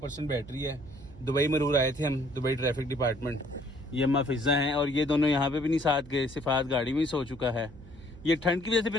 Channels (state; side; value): noise; right; hum, 19 dB below the sound